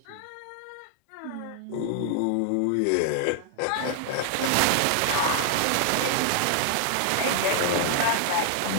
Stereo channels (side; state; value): both; different; correlation 0.00